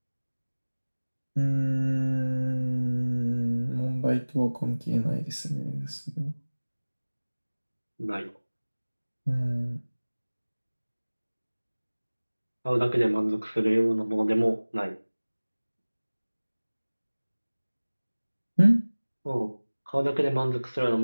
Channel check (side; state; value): both; inverted; correlation -1.00